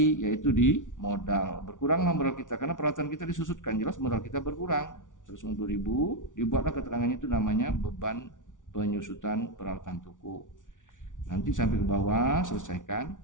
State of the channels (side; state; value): right; late; 0.87 ms